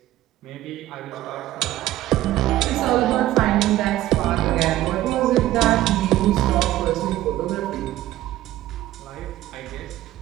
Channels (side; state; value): left; quieter; 14.7 dB